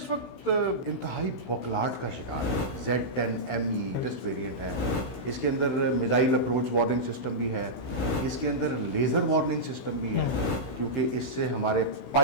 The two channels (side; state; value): right; late; 16 ms